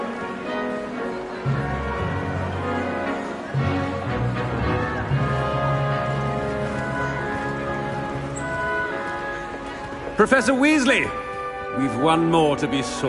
Professor Weasley, we've one more to be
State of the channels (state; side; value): identical; both; correlation 1.00